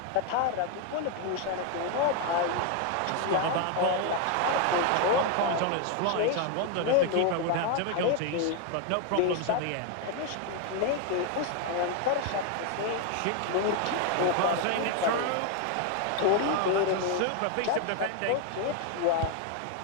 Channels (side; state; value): both; different; correlation 0.01